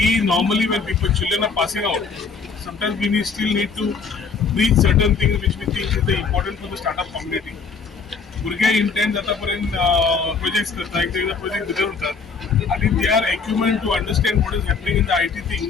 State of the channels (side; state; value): right; quieter; 5.2 dB